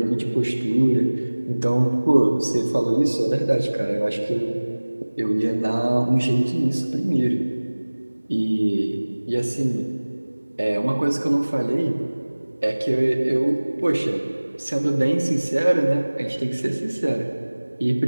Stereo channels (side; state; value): both; inverted; correlation -1.00